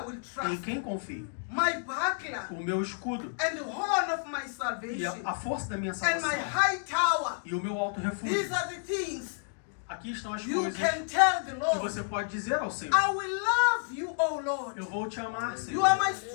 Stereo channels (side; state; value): right; silent; digital silence